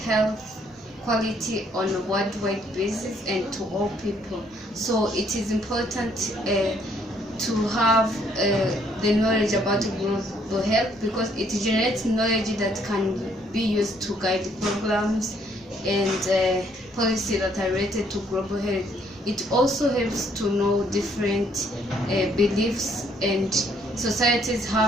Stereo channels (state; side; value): normal; both; correlation 0.67